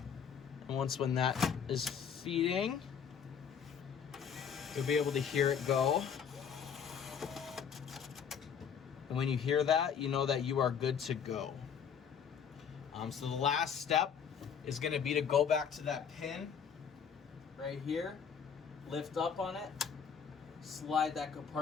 And once when that is feeding, you'll be able to hear it go. And when you hear that, you know that you are good to go. So the last step is going to be to go back to that pin right here, lift up on it, slide that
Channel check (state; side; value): quieter; right; 7.3 dB